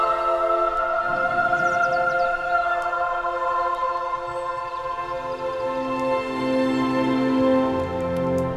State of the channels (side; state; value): both; identical; correlation 1.00